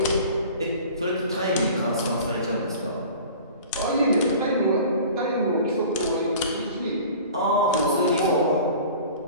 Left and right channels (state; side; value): inverted; both; correlation -0.42